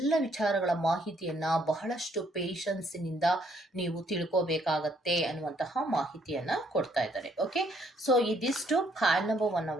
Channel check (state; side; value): normal; both; correlation 0.68